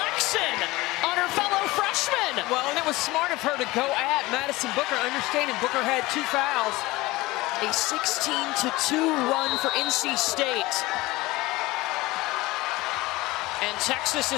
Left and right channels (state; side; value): quieter; right; 20.2 dB